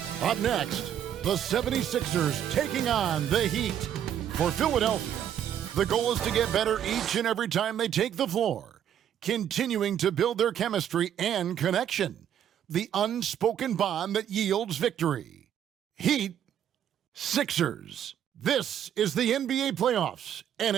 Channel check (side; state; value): left; quieter; 9.9 dB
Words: Up next, the 76ers taking on the Heat. For Philadelphia, the goal is to get better each and every time they take the floor, continuing to build their chemistry and connection, the unspoken bond that yields victory. Heat, Sixers. This is the NBA playoffs, and